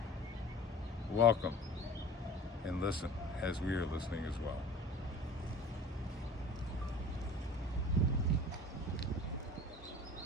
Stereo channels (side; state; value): both; normal; correlation 0.42